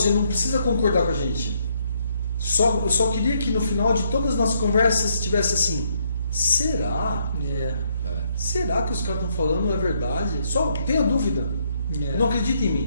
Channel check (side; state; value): both; inverted; correlation -0.72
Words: não precisa concordar com a gente. Eu só queria que no final de todas as nossas conversas tivesse assim, será? Será que os caras estão falando é verdade? Só tenha dúvida. Não acredita em